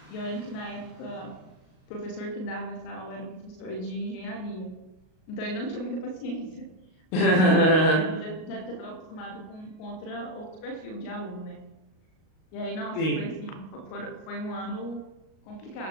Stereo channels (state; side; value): late; right; 38 ms